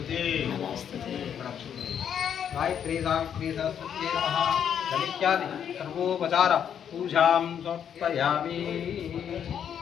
गायत्री सावित्री सरस्वती नमः इत्यादि सर्वोपचार पूजां समर्पयामि।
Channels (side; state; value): right; quieter; 8.6 dB